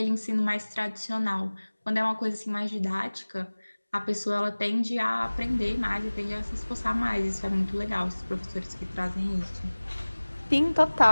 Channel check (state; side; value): inverted; both; correlation -1.00